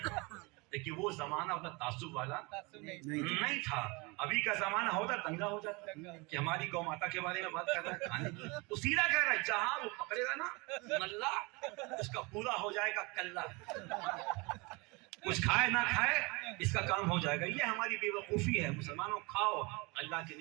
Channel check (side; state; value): left; quieter; 26.8 dB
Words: لیکن وہ زمانہ اتنا تعصب والا نہیں تھا. ابھی کا زمانہ ہوتا دنگا ہو جاتا کہ ہماری گو ماتا کے بارے میں بات کر رہا ہے, کھانے کی تو سیدھا کہہ رہا ہے, جہاں وہ پکڑے گا نا نلہ, اس کا پورا ہو جائے گا کلہ. کچھ کھائے نہ کھائے اس کا کام ہو جائے گا. یہ ہماری بے وقوفی ہے. مسلمانوں کھاؤ, اللہ کی